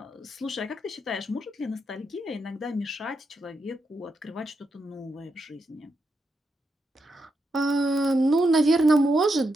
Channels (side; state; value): both; normal; correlation 0.83